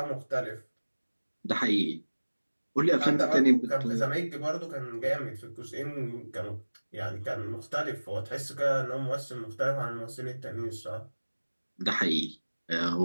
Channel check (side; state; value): both; inverted; correlation -1.00